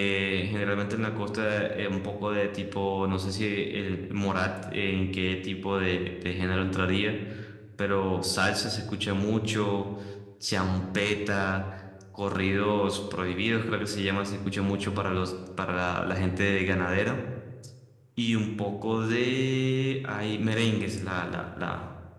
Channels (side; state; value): both; identical; correlation 1.00